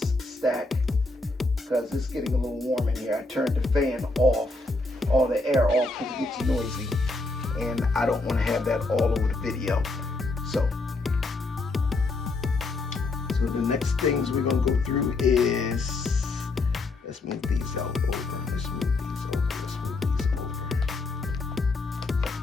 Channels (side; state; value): right; quieter; 3.2 dB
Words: stack, because it's getting a little warm in here. I turned the fan off, all the air off, because it gets noisy. And I don't want to have that all over the video. So the next things we're going to go through is, let's move these out over. Let's move these over. Let's move these over.